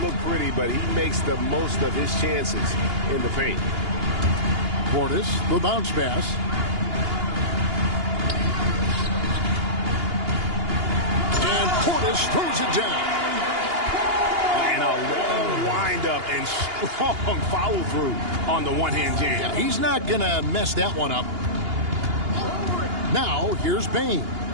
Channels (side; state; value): left; late; 2.8 ms